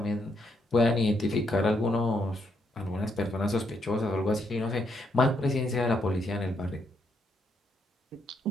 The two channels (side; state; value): both; normal; correlation 0.76